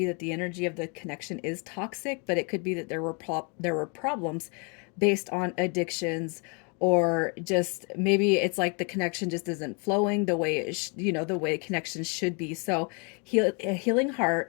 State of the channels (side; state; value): right; quieter; 34.6 dB